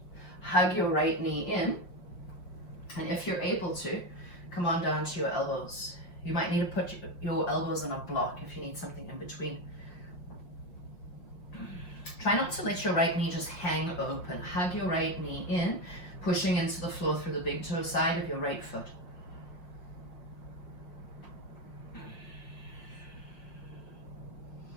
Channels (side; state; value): right; late; 5.6 ms